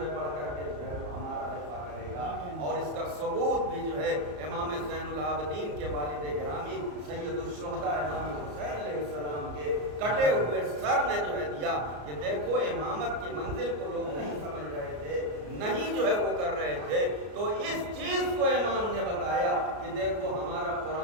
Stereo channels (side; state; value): left; late; 34 ms